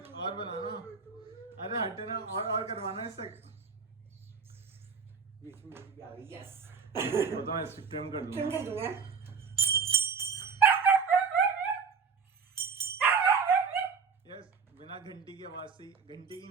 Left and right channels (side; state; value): left; quieter; 5.7 dB